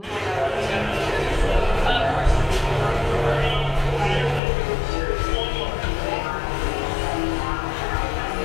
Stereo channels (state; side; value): drops out; right; at 4.4 s